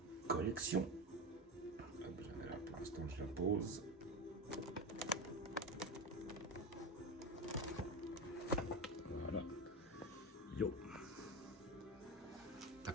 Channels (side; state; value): both; normal; correlation 0.20